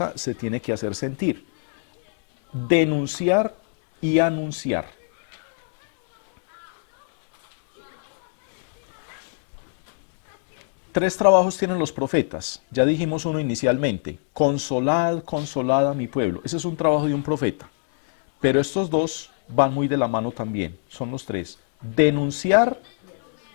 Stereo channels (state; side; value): silent; right; digital silence